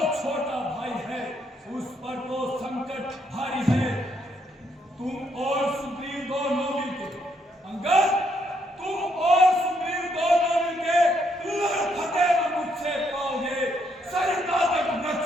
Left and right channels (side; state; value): both; normal; correlation 0.74